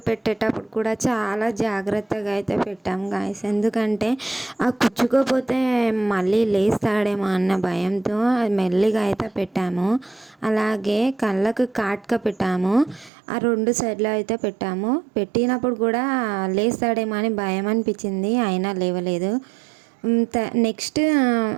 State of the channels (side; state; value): left; drops out; at 13.1 s